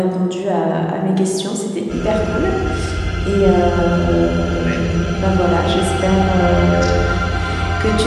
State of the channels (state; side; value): identical; both; correlation 1.00